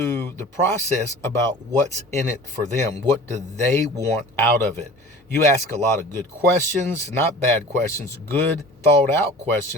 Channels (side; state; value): both; normal; correlation 0.41